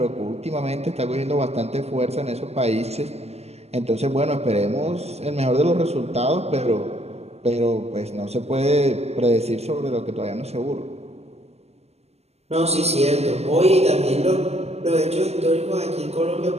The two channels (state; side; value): late; left; 0.30 ms